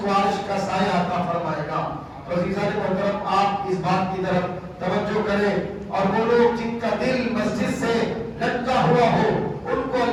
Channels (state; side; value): identical; both; correlation 1.00